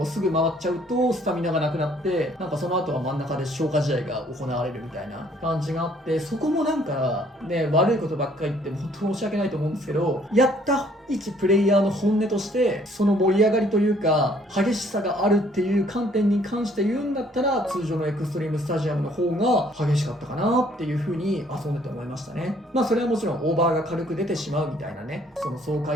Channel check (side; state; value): both; normal; correlation 0.62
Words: すぐ回っちゃうとスタミナがなくなって、なんかその後は真ん中で消化試合が行われるみたいな感じがあって、そこもなんかね悪いことばっかり言って本当申し訳ないと思うんですけど、やった一プレイヤーの本音としてその盛り上がりというか激しさがあるっていう観点に関して言うんだったら、通常のエクストリームスタジアムの方が激しかったかなっていう風に遊んでて思いましたね。それはもちろんオーバーが軽く出てしまうみたいなね、その爽